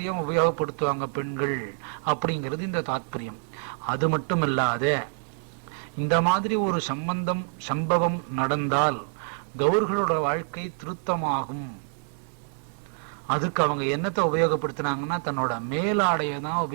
உபயோகப்படுத்துவாங்க பெண்கள் அப்படிங்கிறது இந்த தாத்பரியம். அது மட்டும் இல்லாத, இந்த மாதிரி ஒரு சம்பவம் நடந்தால் கௌர்களோட வாழ்க்கை திருத்தமாகும். அதுக்கு அவங்க என்னத்தை உபயோகப்படுத்தினாங்கன்னா, தன்னோட மேலாடையை தான்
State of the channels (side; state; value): left; silent; 60 dB below the other